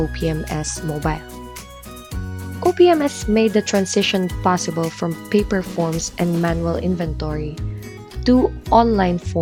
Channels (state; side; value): identical; both; correlation 1.00